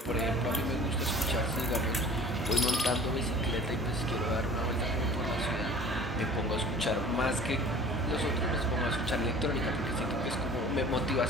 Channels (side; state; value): both; normal; correlation 0.45